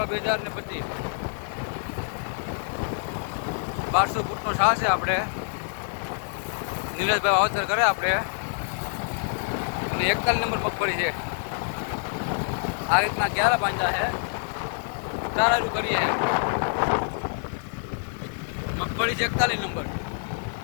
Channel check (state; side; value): silent; right; digital silence